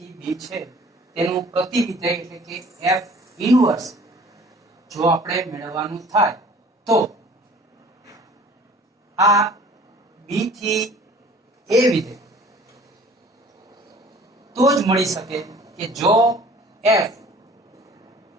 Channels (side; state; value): both; normal; correlation 0.50